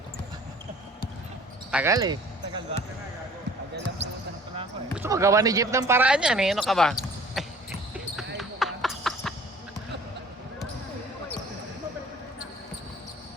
Tagal eh. Tagal ba? Tagal lang pumunta na pala ako eh. Gusto magawa ni Jeep ng paraan yan eh. Ano ka ba?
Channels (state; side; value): normal; both; correlation 0.50